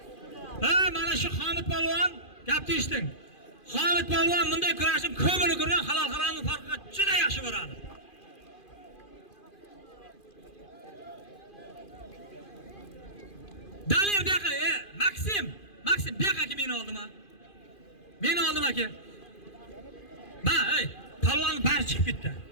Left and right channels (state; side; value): late; right; 2.5 ms